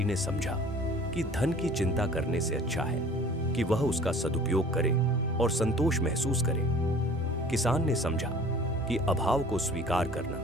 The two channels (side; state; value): both; normal; correlation 0.48